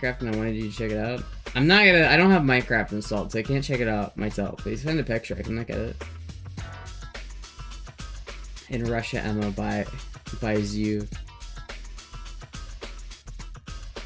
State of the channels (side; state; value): both; identical; correlation 1.00